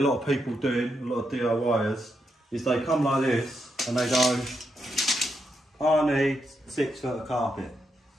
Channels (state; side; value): normal; both; correlation 0.82